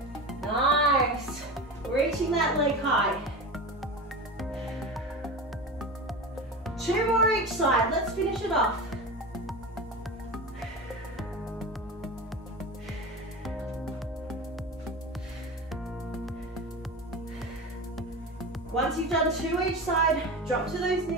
Nice. Reaching that leg high. 2 more each side. Let's finish it off. Once you've done 2 each side, drop to those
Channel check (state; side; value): normal; both; correlation 0.27